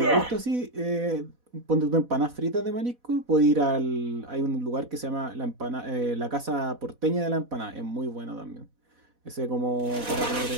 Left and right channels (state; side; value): late; left; 4.1 ms